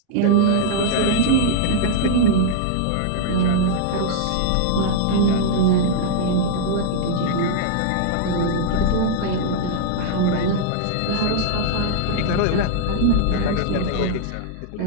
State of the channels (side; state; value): both; different; correlation -0.01